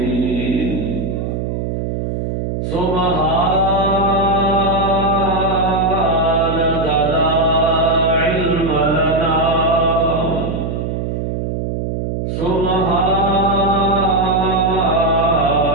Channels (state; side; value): noise; right; hum, 3 dB below the sound